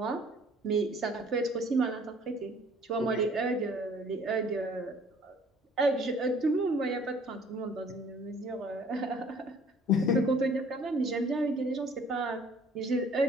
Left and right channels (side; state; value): both; normal; correlation 0.55